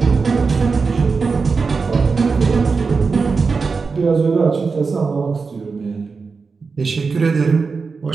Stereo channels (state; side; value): quieter; left; 4.7 dB